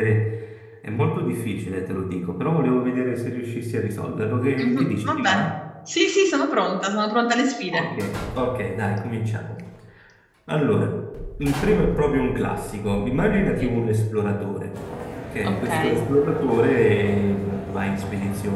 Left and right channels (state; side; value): identical; both; correlation 1.00